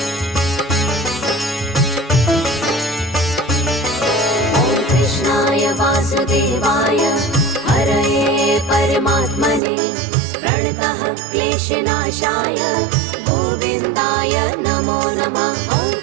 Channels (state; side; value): drops out; left; at 9.6 s